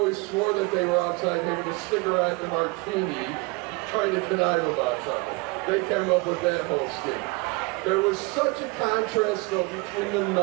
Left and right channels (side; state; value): left; quieter; 26.8 dB